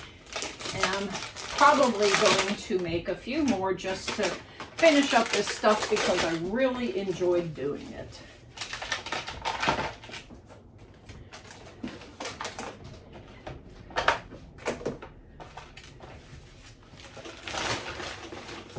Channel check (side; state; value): both; identical; correlation 1.00